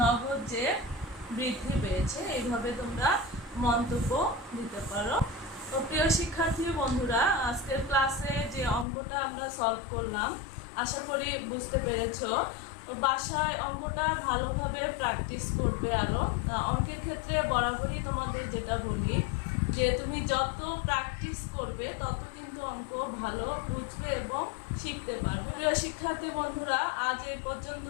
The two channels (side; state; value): right; drops out; at 8.8 s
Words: নগদ যে বৃদ্ধি পেয়েছে। এইভাবে তোমরা মন্তব্য দিতে পারো। তো প্রিয় শিক্ষার্থী বন্ধুরা, আজকের ক্লাসে যে অঙ্কটা আমরা সলভ করলাম আশা করি বুঝতে পেরেছো। তো বাসায় অঙ্কটা ভালোভাবে প্র্যাকটিস করবে। আরও অঙ্কের ক্ষেত্রে বরাবরই তোমাদের যেটা বলি যে তুমি যত প্র্যাকটিস করবে তত কিন্তু অঙ্ক ভালো বুঝবে এবং শিখতে পারবে। প্রিয় শিক্ষার্থী বন্ধুরা, আজ এই